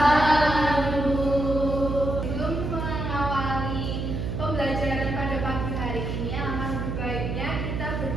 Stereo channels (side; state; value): right; noise; hum, 3 dB below the sound